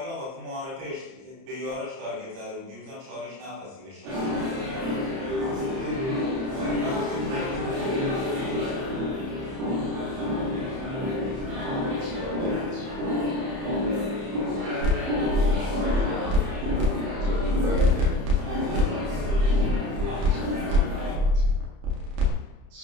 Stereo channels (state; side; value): late; left; 30 ms